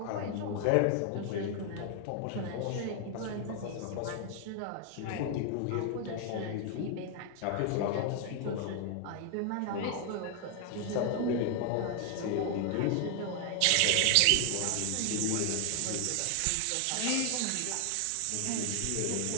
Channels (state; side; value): different; both; correlation 0.00